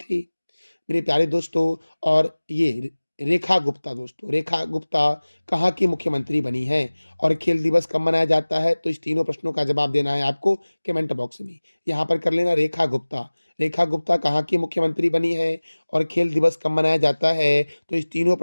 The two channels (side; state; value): both; inverted; correlation -1.00